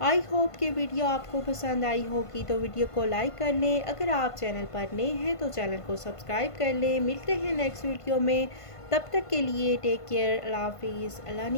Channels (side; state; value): right; late; 1.5 ms